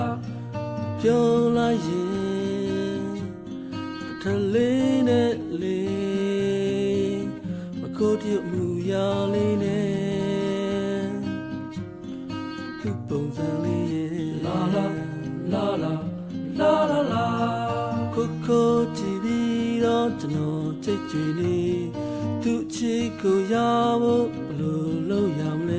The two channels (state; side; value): identical; both; correlation 1.00